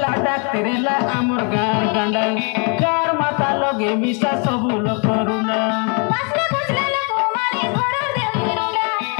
तेरेला आमर गार गांडा गार माता लगे मिसा सबु लोग करुणा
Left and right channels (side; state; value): right; quieter; 36.5 dB